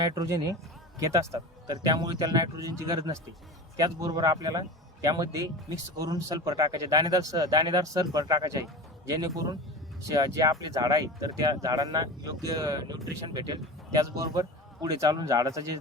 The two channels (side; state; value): both; normal; correlation 0.30